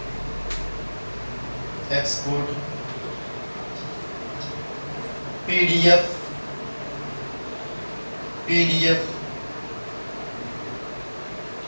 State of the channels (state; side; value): inverted; both; correlation -1.00